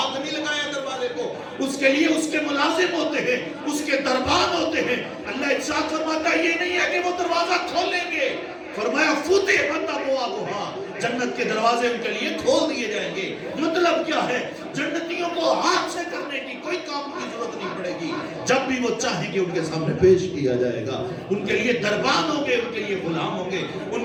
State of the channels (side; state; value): both; identical; correlation 1.00